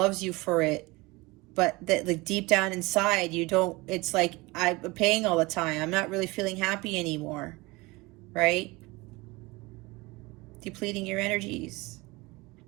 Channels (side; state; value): left; quieter; 23.2 dB